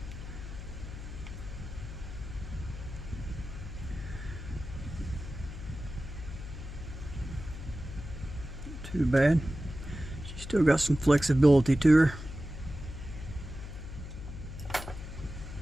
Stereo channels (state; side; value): noise; left; hum, 10 dB below the sound